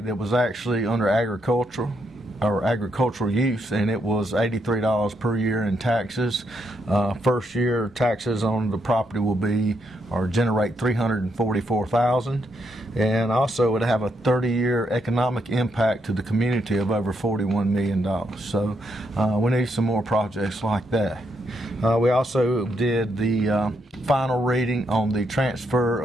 that was actually under agricultural use, and it was $83 per year in taxes. First year taxes on the property will be or generate $344,000, and also it would have a 30-year economic impact to the community of over $41 million. So we need some more projects like that. We also did the final reading on the transfer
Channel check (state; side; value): normal; both; correlation 0.78